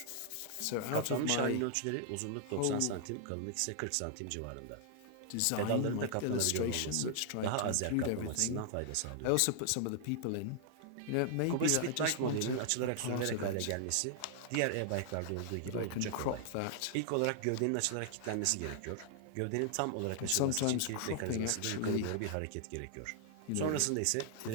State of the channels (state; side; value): different; both; correlation -0.01